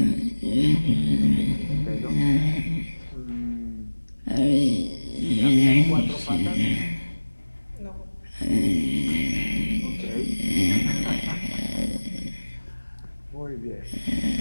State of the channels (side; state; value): both; inverted; correlation -1.00